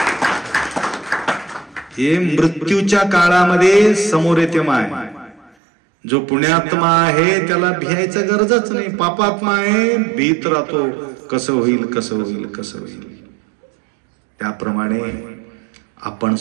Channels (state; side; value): drops out; left; at 5.6 s